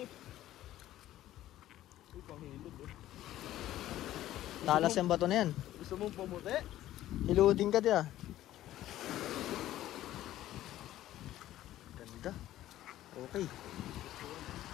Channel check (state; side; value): quieter; right; 13.9 dB